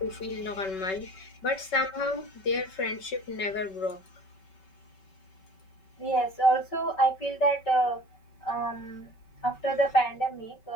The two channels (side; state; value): right; late; 5.3 ms